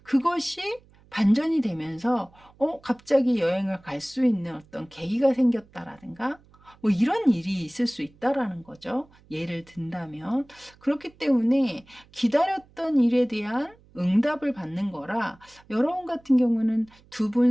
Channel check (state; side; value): noise; right; hum, 28 dB below the sound